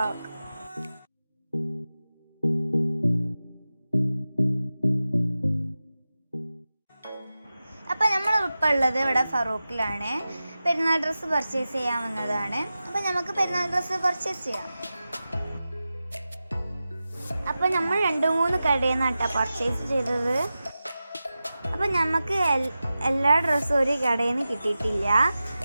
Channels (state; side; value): inverted; both; correlation -0.94